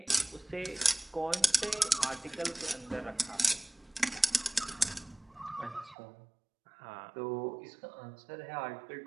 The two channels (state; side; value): drops out; left; at 6.0 s